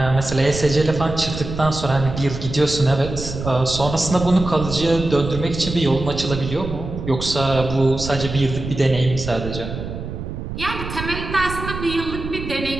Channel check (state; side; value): noise; right; rumble, 7 dB below the sound